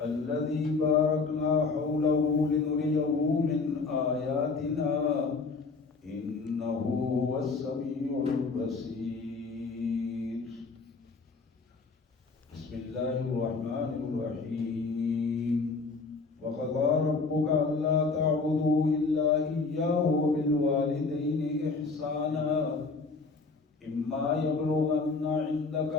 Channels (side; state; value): right; quieter; 4.2 dB